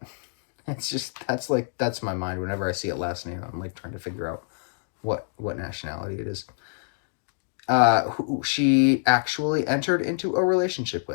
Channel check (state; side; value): silent; right; digital silence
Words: it's just, that's my mind. Whenever I see a last name, I'm like trying to figure out what nationality it is. Who she actually entered into a relationship